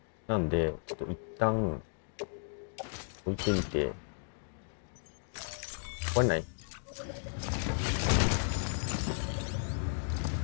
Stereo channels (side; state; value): right; silent; digital silence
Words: なんで、ちょっと一旦、置いてみて、壊れない？